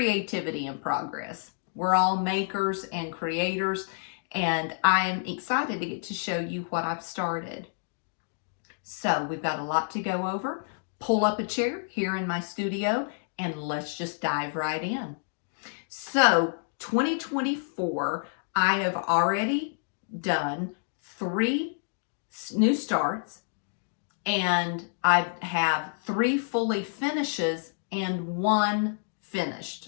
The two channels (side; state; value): right; silent; digital silence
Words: in Progress. We're all makers and creators, and I am excited to get to show you what I've started. So we've got a lot to go over. Pull up a chair here in my studio and let's just dive right in. So 2024, I have already done 3 new starts and I have 3 fully finishes and 1